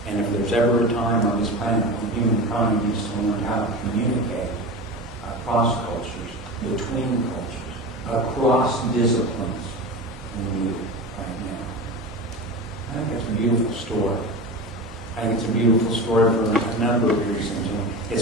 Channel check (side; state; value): both; normal; correlation 0.28